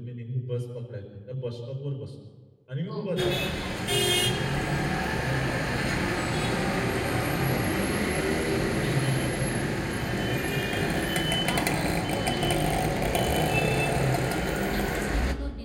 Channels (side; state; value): both; identical; correlation 1.00